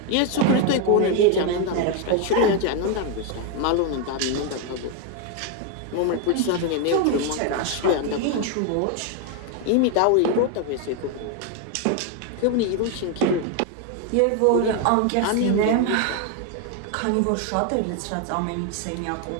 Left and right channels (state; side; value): different; both; correlation 0.01